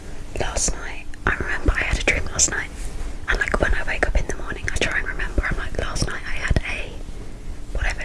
Last night, I remember I had a dream last night, and like when I wake up in the morning I try and remember, I'm like, last night I had a whatever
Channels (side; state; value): both; identical; correlation 1.00